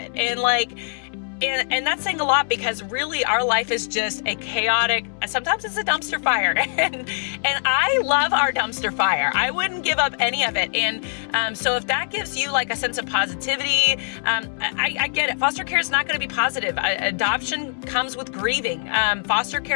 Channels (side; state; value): right; silent; 62 dB below the other